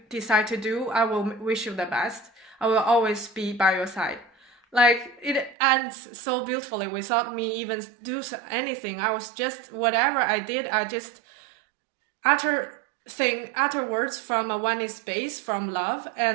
decide to do, I will wish you the best. I will always be by your side. Like, it ends so beautifully without me even do anything. I was just, whatever I did, I just utter words from a oneness space, from love,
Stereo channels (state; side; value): drops out; left; at 5.6 s